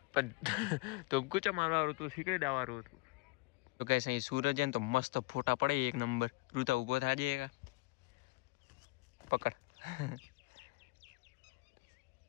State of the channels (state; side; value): quieter; right; 23.6 dB